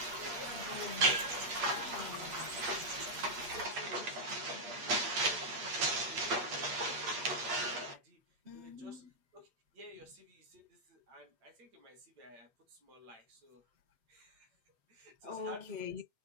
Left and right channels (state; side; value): late; left; 8.4 ms